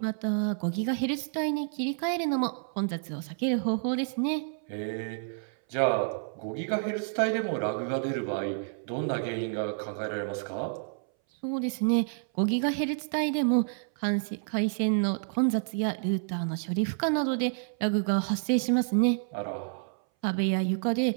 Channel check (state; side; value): silent; left; 58 dB below the other